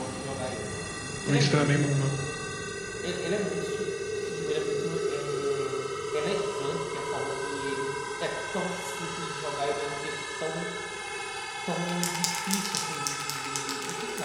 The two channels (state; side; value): identical; both; correlation 1.00